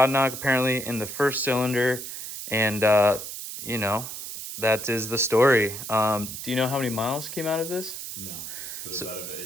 knock apparently in the first cylinder, and you know, that is the story. Do you know how many miles came out of this? No, but it's out of an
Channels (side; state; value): right; noise; hiss, 8 dB below the sound